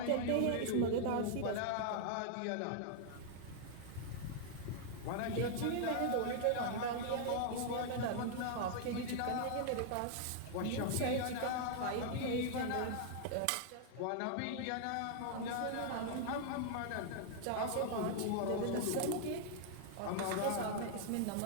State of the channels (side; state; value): both; different; correlation -0.01